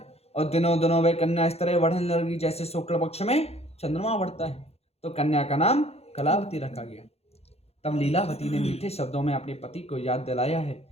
और दिनों दिनों वह कन्या इस तरह बढ़ने लगी जैसे शुक्ल पक्ष में चंद्रमा बढ़ता है। तो कन्या का नाम कलावती रखा गया। तब लीलावती ने मीठे शब्दों में अपने पति को याद दिलाया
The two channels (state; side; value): late; right; 0.30 ms